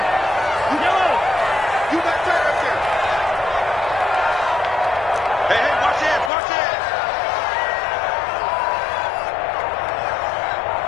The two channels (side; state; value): right; drops out; at 6.3 s